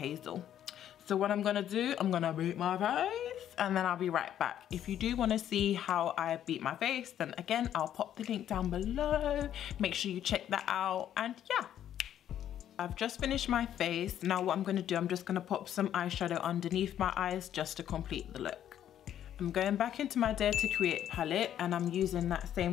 So what I'm gonna do, I'm gonna beat my face and then I'll be right back. If you do wanna see how I beat my face, then again, I'll pop the link down below. Make sure you check that out, and yeah. I've just finished my face. Now what I'm gonna do, I'm just gonna pop some eyeshadow underneath my eyes just to complete the look. I'm going back into my Dare to Create palette and I'm using that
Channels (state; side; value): quieter; right; 10.6 dB